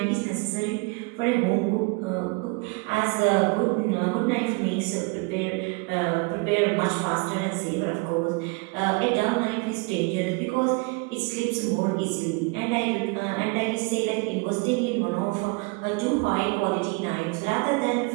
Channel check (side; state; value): left; quieter; 29.2 dB